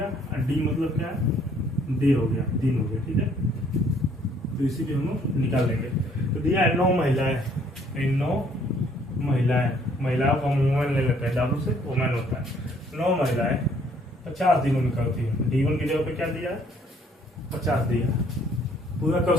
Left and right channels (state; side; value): normal; both; correlation 0.63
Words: और D मतलब क्या है? डे हो गया, दिन हो गया, ठीक है। तो इसी भी हम लोग निकाल लेंगे। तो दिया है 9 महिलाएं, 9 महिलाएं महिलाओं का वुमेन ले लेते हैं, डब्ल्यू से वुमेन होता है। 9 महिलाएं 50 दिनों में करती है। D1 की जगह पे क्या दिया है? 50 दिया, पूरा कर